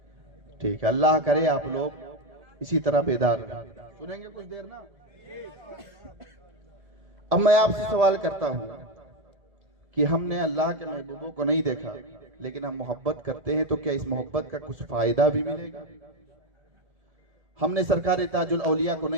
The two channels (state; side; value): late; left; 1.7 ms